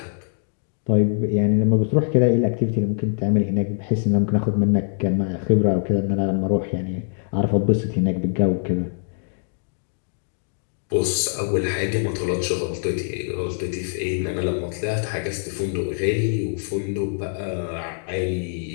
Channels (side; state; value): right; silent; digital silence